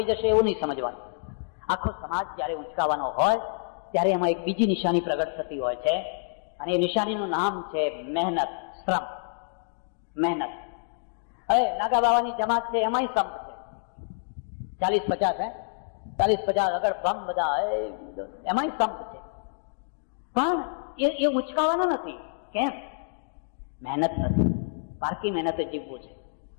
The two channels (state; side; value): silent; right; digital silence